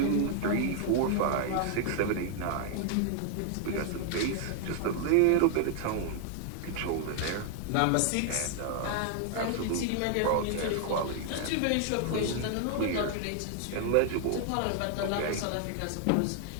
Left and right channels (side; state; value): both; different; correlation 0.00